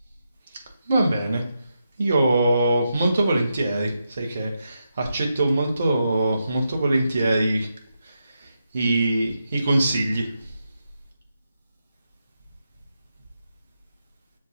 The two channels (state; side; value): inverted; both; correlation -0.85